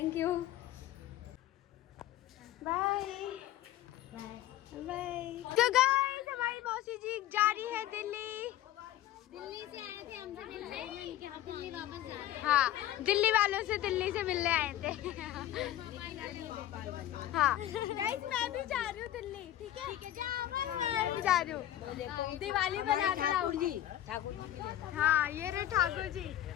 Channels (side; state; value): right; quieter; 13.2 dB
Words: यू, बाय बाय। तो गाइस हमारी मौसी जी जा रही है दिल्ली। दिल्ली से आए थे हमसे मिलने कि हम दिल्ली वापस जा रहे हैं। हाँ, दिल्ली वालों से दिल्ली से मिलने आए थे। हाँ गाइस मैं भी जा रही हूँ दिल्ली, ठीक है? मैं भी जा रही हूँ, दिवाली बनाकर आऊंगी। हाँ ये रहे ठाकुर जी।